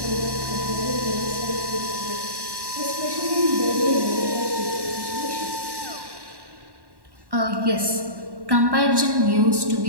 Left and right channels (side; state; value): left; late; 1.1 ms